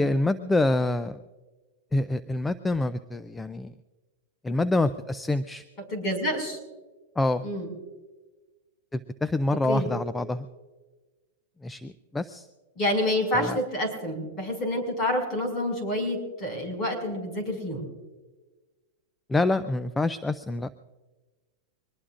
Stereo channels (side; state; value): both; normal; correlation 0.61